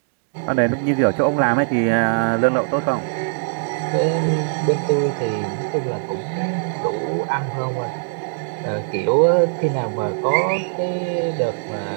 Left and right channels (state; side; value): silent; left; digital silence